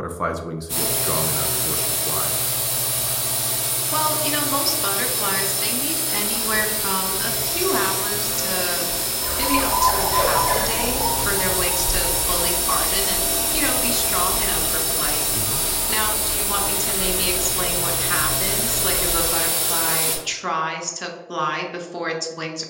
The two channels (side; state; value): both; identical; correlation 1.00